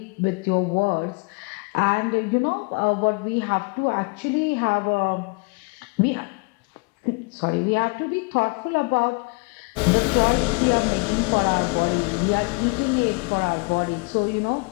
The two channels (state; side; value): quieter; right; 30.4 dB